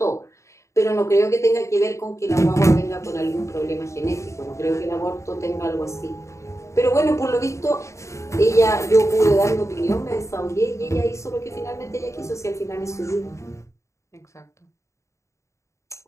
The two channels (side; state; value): right; late; 0.14 ms